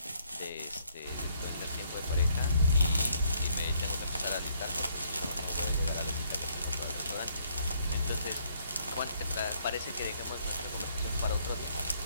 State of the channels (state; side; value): inverted; both; correlation -0.68